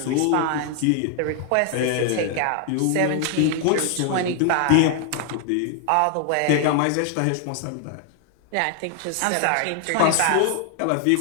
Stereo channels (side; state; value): both; different; correlation 0.00